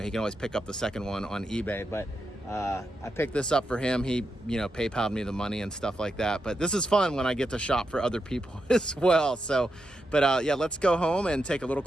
he can always pick up the second one on eBay. But I picked this up for him. He, you know, PayPal'd me the money and stuff like that. But this is fun when I get to shop for other people as well. So, but yeah, let's go home and take a little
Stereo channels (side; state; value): both; normal; correlation 0.86